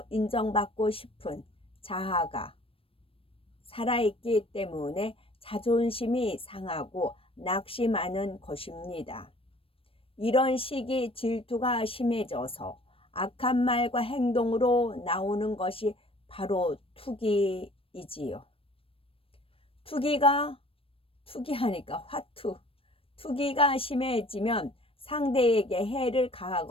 인정받고 싶은 자아가 살아있기 때문에 자존심이 상하고 낙심하는 것입니다. 이런 시기 질투가 심해져서 악한 말과 행동으로 나오는 것이 바로 투기이지요. 투기하니까 투기가 심해지면 상대에게 해를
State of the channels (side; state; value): right; late; 0.27 ms